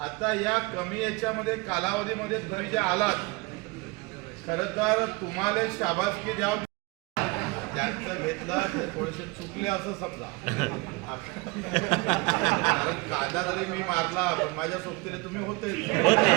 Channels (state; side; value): quieter; left; 25.8 dB